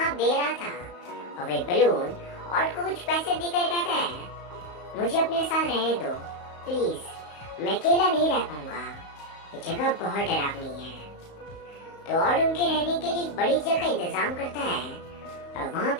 दे रहा था और वही बलून ऑड को कुछ पैसे देकर कहता है, मुझे अपने साथ रहने दो प्लीज, मैं अकेला नहीं रह पाऊंगा, ये जगह बहुत डरावनी है। तो ऑड उनके रहने के लिए एक बड़ी जगह का इंतजाम करता है और वहाँ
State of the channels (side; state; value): right; late; 34 ms